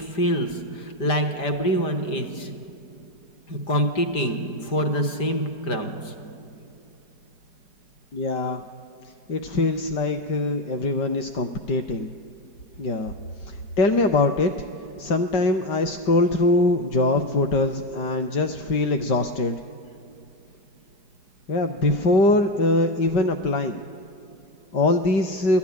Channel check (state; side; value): late; right; 5.1 ms